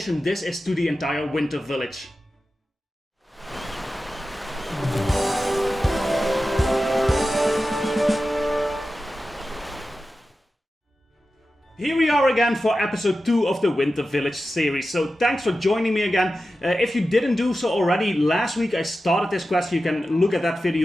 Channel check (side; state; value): both; normal; correlation 0.93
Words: this is to the entire Winter Village. Here we are again for episode 2 of the Winter Village series, so thanks for joining me again. If you didn't do so already, last week I started this quest. You can look at that